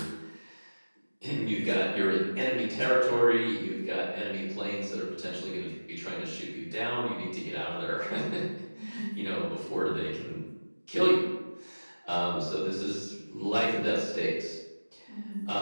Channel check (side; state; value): both; inverted; correlation -1.00